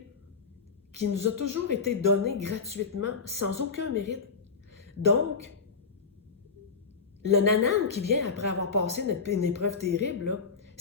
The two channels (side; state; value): right; quieter; 5.1 dB